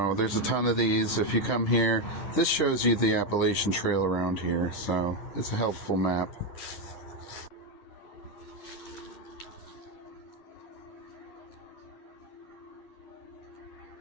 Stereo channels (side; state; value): right; late; 10 ms